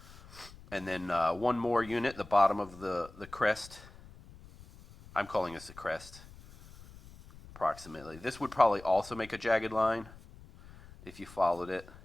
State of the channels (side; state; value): left; noise; rumble, 20 dB below the sound